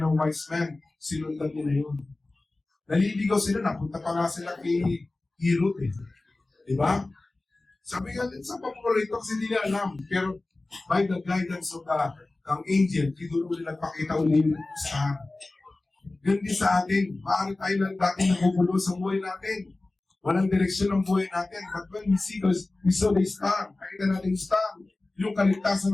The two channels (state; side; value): quieter; right; 3.0 dB